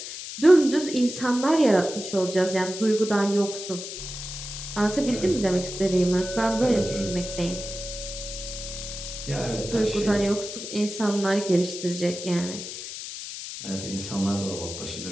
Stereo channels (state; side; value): noise; left; hiss, 9 dB below the sound